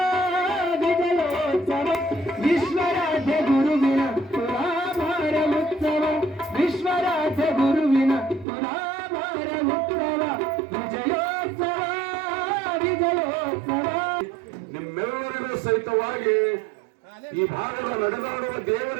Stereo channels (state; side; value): drops out; left; at 8.5 s